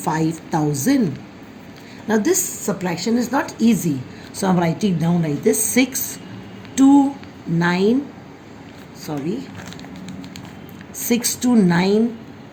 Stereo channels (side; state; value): both; identical; correlation 1.00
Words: Now this subtraction is not easy, so I'm writing down like this: